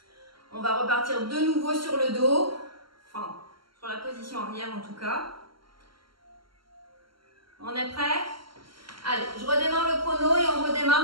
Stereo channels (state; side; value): late; left; 0.74 ms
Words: On va repartir de nouveau sur le dos. Enfin, sur la position arrière en tout cas. On est prêt? Allez, je redémarre le chrono et on